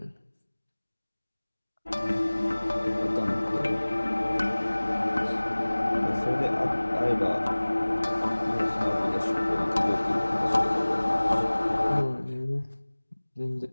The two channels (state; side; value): inverted; both; correlation -1.00